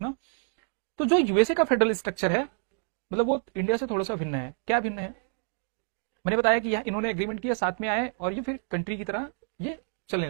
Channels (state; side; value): silent; left; 59 dB below the other